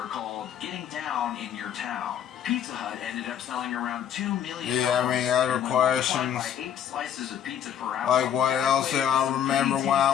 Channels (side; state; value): right; quieter; 9.4 dB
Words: called Getting Down in Your Town. Pizza Hut ended up selling around 2 million. Yeah, I mean, other questions. By 8 slices of pizza per hour. Like what else do I remember when